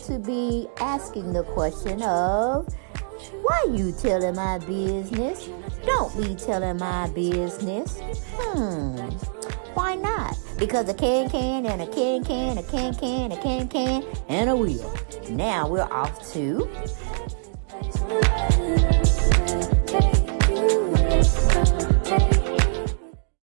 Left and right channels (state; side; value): silent; left; digital silence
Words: be asking the question of, why you telling my business? Don't be telling my business. Why not? Because a can and a can, a can, and a wheel. Now we're off to...